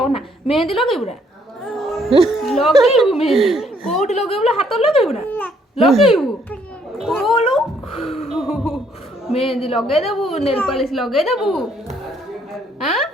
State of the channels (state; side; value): normal; both; correlation 0.67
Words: ଅନା ମେହେନ୍ଦି ଲଗେଇବୁ ନା ଲଗେଇବୁ ମେହେନ୍ଦି କୋଉଠି ଲଗେଇବୁ ହାତରେ ଲଗେଇବୁ ନା ଲଗେଇବୁ କୋଲୁ ମେହେନ୍ଦି ଲଗେଇଦେବୁ ନେଲ ପଲିଶ ଲଗେଇଦେବୁ ଆଁ